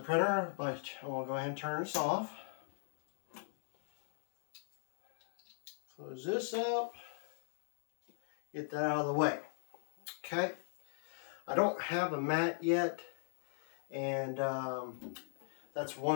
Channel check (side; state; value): right; silent; digital silence